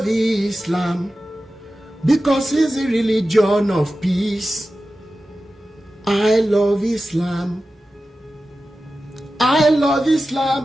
Islam because it's the religion of peace. I love Islam, I love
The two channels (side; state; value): both; normal; correlation 0.94